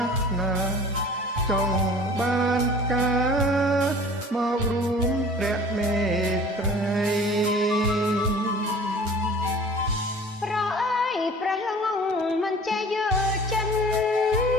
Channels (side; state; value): both; normal; correlation 0.45